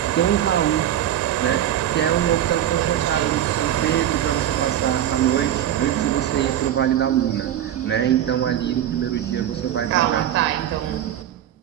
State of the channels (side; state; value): left; quieter; 11.2 dB